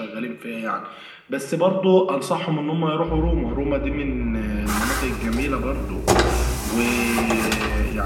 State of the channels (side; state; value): both; identical; correlation 1.00